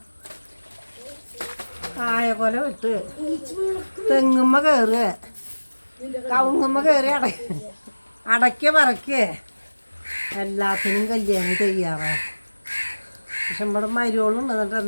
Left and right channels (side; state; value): both; inverted; correlation -1.00